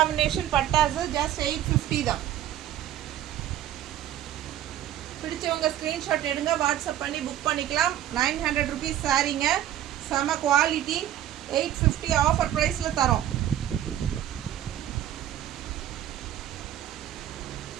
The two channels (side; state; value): left; quieter; 12.0 dB